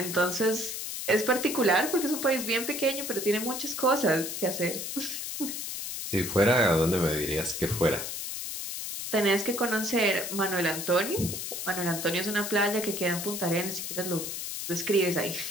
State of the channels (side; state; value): left; noise; hiss, 5 dB below the sound